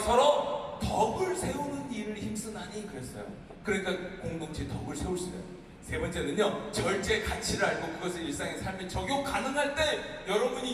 덕을 세우는 일을 힘쓰나니 그랬어요. 그러니까 공동체 덕을 세울 수 있어요. 세 번째는요, 절제의 가치를 알고 그것을 일상의 삶에 적용 가능할 때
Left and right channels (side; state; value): both; identical; correlation 1.00